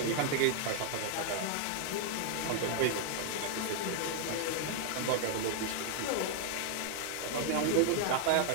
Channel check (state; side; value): different; both; correlation 0.00